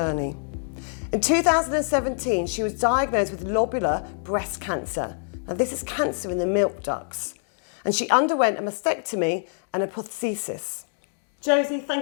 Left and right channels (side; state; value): right; silent; 61 dB below the other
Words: In 2017, she was diagnosed with lobular breast cancer. Now this is cancer in the milk ducts. And she underwent a mastectomy and a prosthesis. Josie,